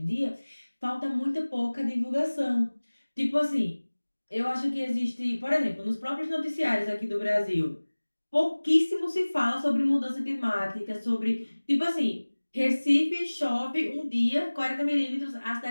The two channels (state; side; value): inverted; both; correlation -1.00